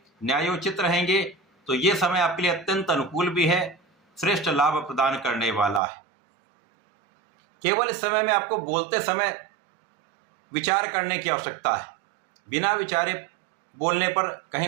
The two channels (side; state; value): left; drops out; at 5.8 s